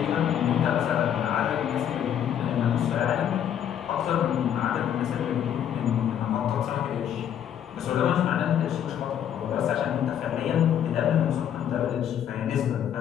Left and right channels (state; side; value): quieter; right; 9.7 dB